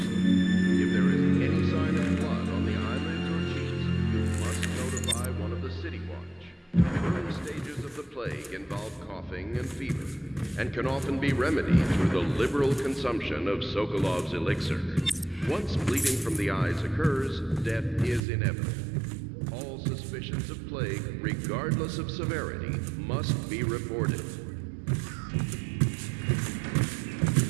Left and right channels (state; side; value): drops out; left; at 18.2 s